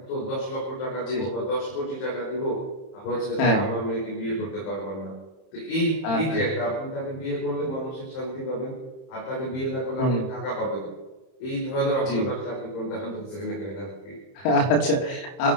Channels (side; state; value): right; late; 31 ms